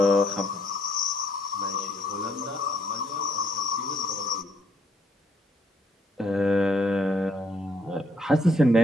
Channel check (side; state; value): both; normal; correlation 0.69